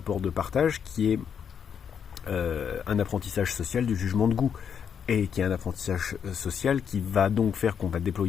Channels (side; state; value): right; quieter; 7.6 dB